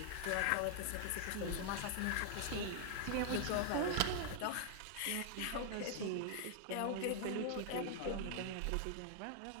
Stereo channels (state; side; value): different; both; correlation 0.00